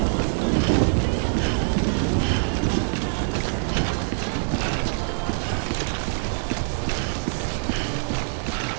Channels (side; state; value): left; silent; 62 dB below the other